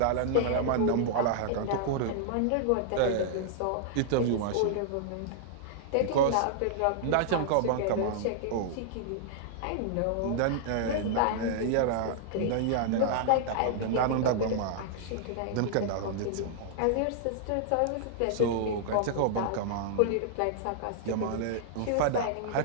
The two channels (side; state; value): both; different; correlation -0.01